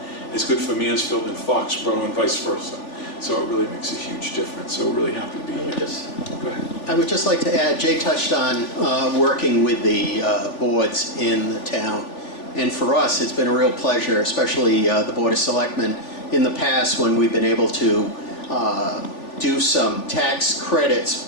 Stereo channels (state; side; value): late; right; 3.4 ms